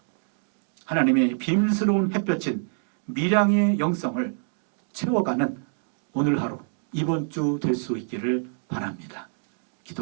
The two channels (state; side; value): silent; left; digital silence